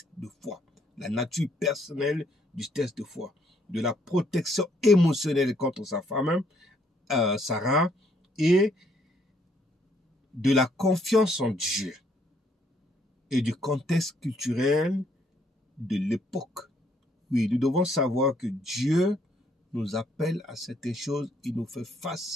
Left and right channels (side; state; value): both; normal; correlation 0.69